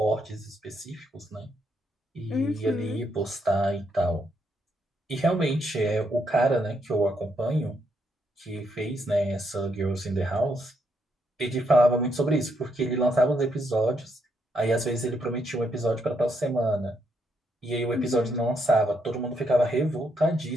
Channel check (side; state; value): both; normal; correlation 0.77